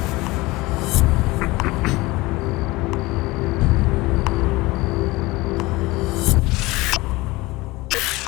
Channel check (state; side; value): quieter; right; 21.3 dB